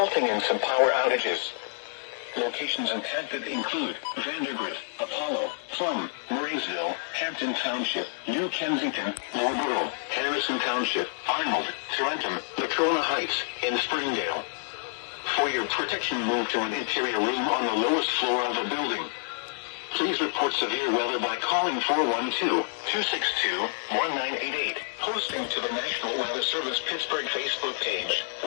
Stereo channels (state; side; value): silent; right; 59 dB below the other